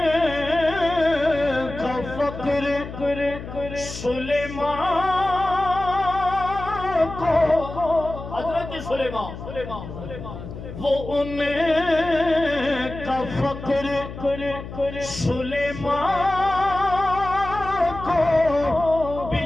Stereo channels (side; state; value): left; noise; hum, 11 dB below the sound